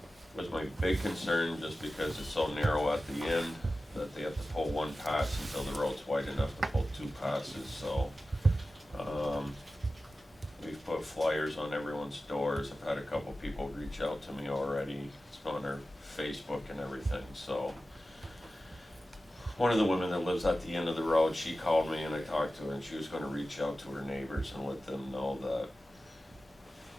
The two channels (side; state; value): both; normal; correlation 0.94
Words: was my big concern just because it's so narrow at the end that they have to pull one pass until the road's wide enough to pull two passes, so we've put flyers on everyone's doors. I've had a couple people reach out to me already. It's on their Facebook and everything, so one of the women that lives at the end of the road, she called me and I talked to her, and she was gonna reach out to her neighbors and let them know that